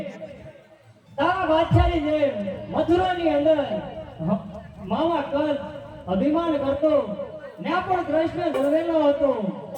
તારા બાદશાહની જેમ મથુરાની અંદર મામા કંસ અભિમાન કરતો ત્યાં પણ કૃષ્ણ જન્મેલો હતો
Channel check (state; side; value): identical; both; correlation 1.00